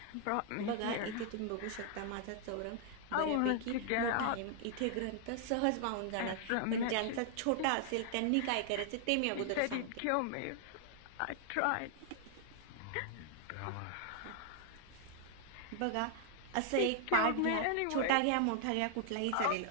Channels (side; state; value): both; different; correlation 0.00